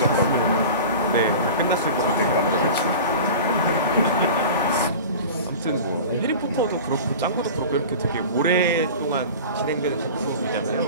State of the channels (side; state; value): both; inverted; correlation -0.35